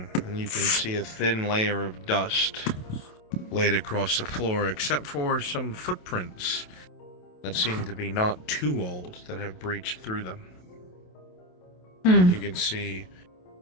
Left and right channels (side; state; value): right; late; 27 ms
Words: and you can see a thin layer of dust laid across the floor, except for some footprints that seem to be not too old that have breached through them. You can see